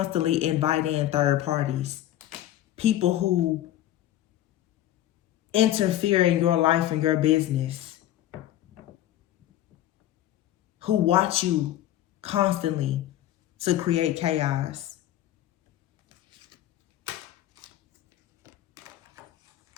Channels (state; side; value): quieter; right; 13.2 dB